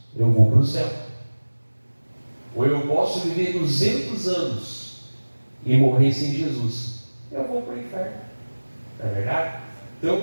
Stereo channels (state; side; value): inverted; both; correlation -1.00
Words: eu vou para o céu. Ou eu posso viver 200 anos e morrer sem Jesus. Eu vou para o inferno. Não é verdade?